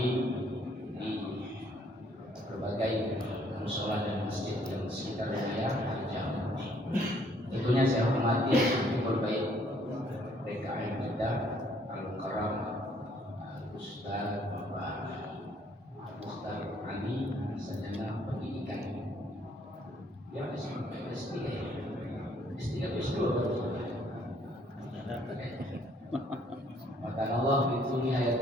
di berbagai musola dan masjid yang sekitar wilayah Jambi. Tentunya saya hormati berbaik PKM kita Al-Mukarram Ustaz Bapak Mukhtar Ali Sarjana Pendidikan. Ya, S3 S2 Maka Allah itu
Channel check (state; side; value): normal; both; correlation 0.64